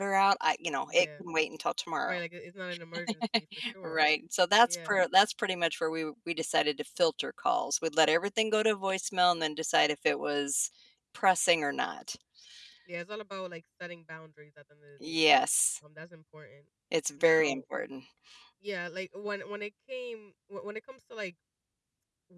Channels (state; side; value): identical; both; correlation 1.00